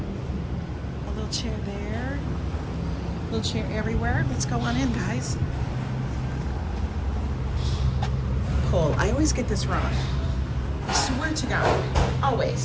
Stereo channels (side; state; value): both; identical; correlation 1.00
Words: a little chair there, a little chair everywhere. Let's go on in, guys. Cole, I always get this wrong. I swear to God,